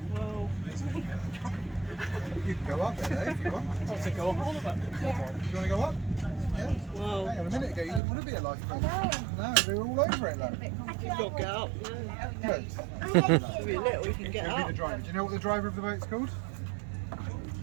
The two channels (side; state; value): left; drops out; at 8.0 s